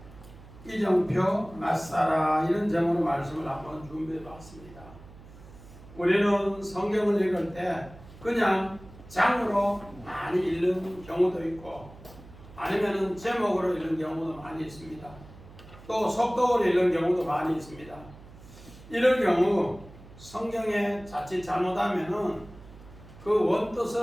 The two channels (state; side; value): noise; right; hum, 20 dB below the sound